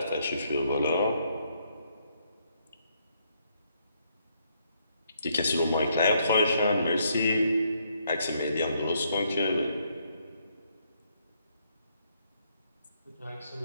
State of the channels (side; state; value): both; inverted; correlation -0.73